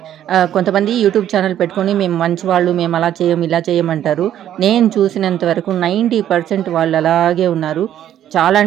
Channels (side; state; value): left; quieter; 11.1 dB